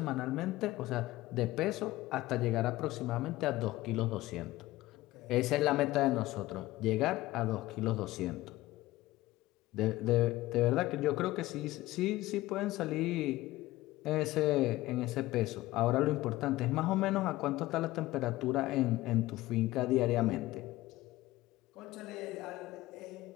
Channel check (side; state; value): right; quieter; 17.5 dB